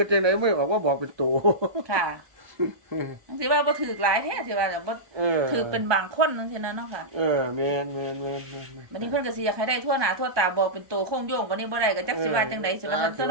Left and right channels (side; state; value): left; late; 1.2 ms